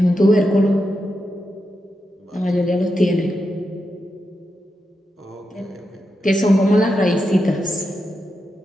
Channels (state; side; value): normal; both; correlation 0.87